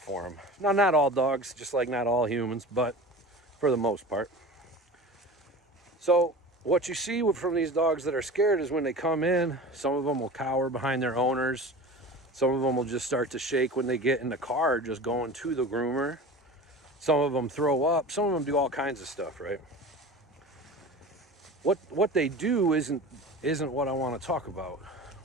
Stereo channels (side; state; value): both; normal; correlation 0.35